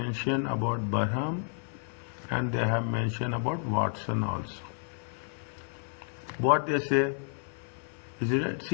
about Barham and they have mentioned about Watson also. What they say, is it right?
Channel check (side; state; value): right; silent; 57 dB below the other